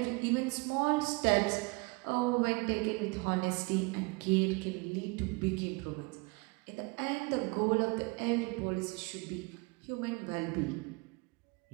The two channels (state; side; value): quieter; left; 27.7 dB